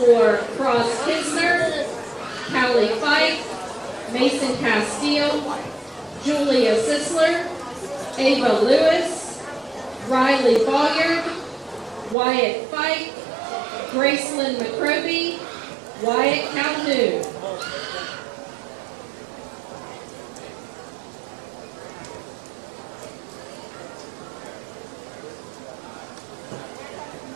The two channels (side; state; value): left; drops out; at 12.2 s